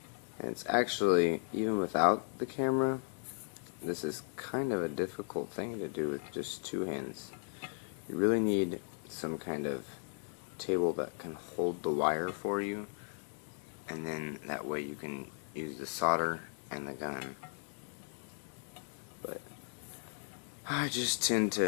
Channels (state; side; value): silent; right; 54 dB below the other